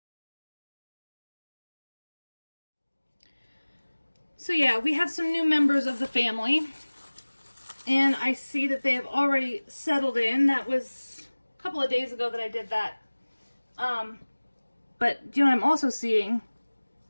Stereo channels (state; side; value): inverted; both; correlation -1.00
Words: So yeah, we have some new members of the family, and I see that they have already settled in. That was a couple of days ago that I did that. But you know what I'm also seeing